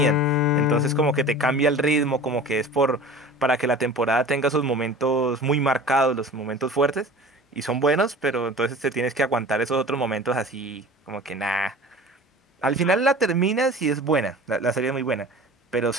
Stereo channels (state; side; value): normal; both; correlation 0.40